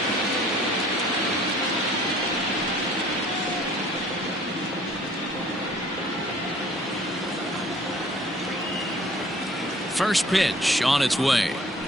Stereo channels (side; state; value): both; normal; correlation 0.54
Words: First pitch on its way.